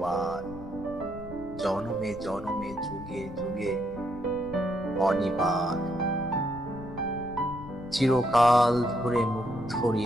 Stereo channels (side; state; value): left; noise; rumble, 14 dB below the sound